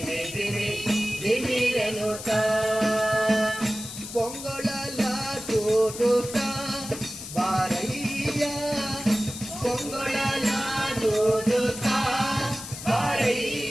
ಧಿಮಿ ಧಿಮಿರನುತ, ಪೊಂಗೊಳಲ ತೋರುತ ಬಾರಯ್ಯ, ಪೊಂಗೊಳಲ ತೋರುತ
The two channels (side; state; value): left; noise; hiss, 10 dB below the sound